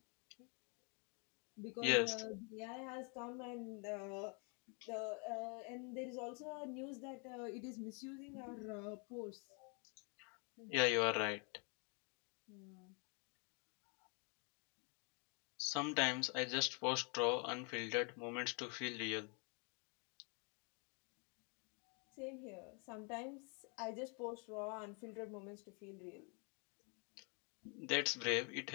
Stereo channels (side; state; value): right; quieter; 35.9 dB